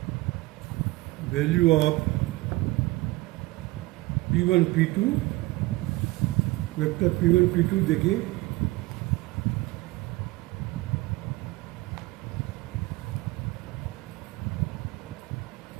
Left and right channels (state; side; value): quieter; left; 20.8 dB